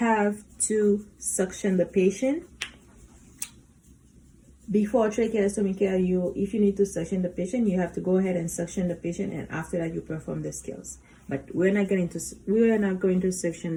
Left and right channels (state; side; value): identical; both; correlation 1.00